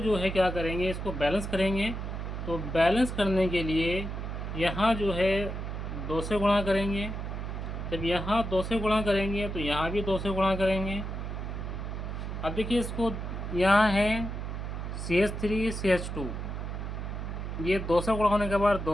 है क्या करेंगे, इसको बैलेंस करेंगे। तो बैलेंस करने के लिए यहाँ जो है 2 से गुणा करेंगे। जब यहाँ 2 से गुणा करेंगे तो यहाँ भी 2 से गुणा करेंगे। अब देखिए इसको, यहाँ है CH3 CH2, ये 2 से गुणा होने के बाद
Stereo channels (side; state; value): right; noise; hum, 5 dB below the sound